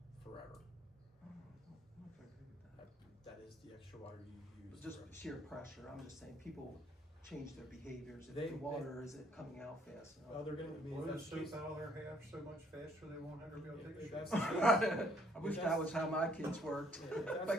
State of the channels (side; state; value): both; normal; correlation 0.65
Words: forever. I don't know if I agree with that. That is the extra water you use. Just forever. sheer pressure, I'm just saying, people change their behaviors, if They- the water isn't coming out fast enough. Oh, they're gonna, I mean, if Blow the that's the case, soap out of their half so much faster they won't ever be able to take a if shit. that's the case, I wish that was how my kids worked. if that's My